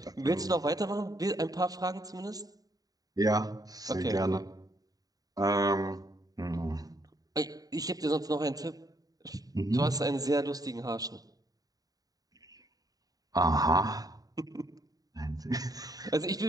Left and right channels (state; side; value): late; left; 0.18 ms